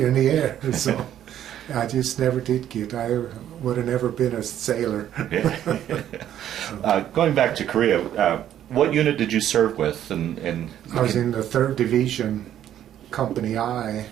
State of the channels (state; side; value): quieter; left; 11.0 dB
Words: in the air. So I just never did get. I would have never been a sailor. Going back to Korea, what unit did you serve with? And I was in the 3rd Division, Company I.